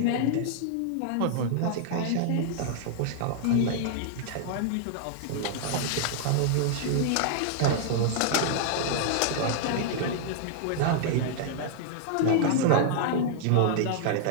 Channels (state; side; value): different; both; correlation -0.01